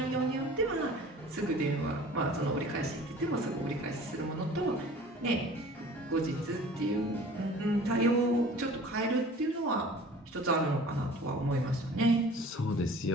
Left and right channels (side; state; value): both; normal; correlation 0.45